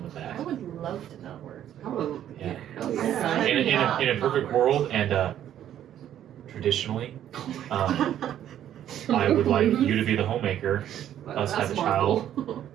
with that. I would love to not work. Oh, Yeah. hell yeah. In a perfect world, and traditionally, I would like you to be the homemaker, us have a child,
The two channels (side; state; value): left; quieter; 11.0 dB